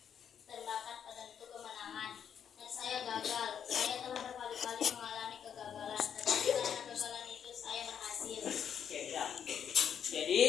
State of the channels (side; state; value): right; quieter; 8.3 dB